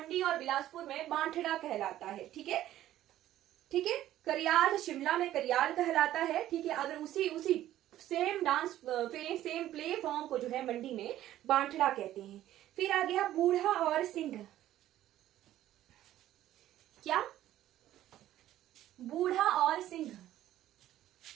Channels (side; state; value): left; quieter; 13.3 dB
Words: और बिलासपुर में बांठड़ा कहलाता है। ठीक है, ठीक है, करियाल शिमला में करियाल कहलाता है। ठीक है, अगर उसी same dance same play form को जो है मंडी में बांठड़ा कहते हैं। फिर आ गया बूढ़ा और सिंह। क्या? बूढ़ा और सिंह,